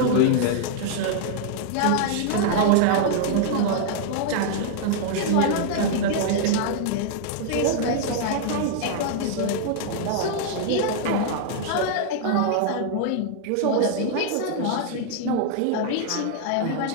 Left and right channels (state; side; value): different; both; correlation -0.01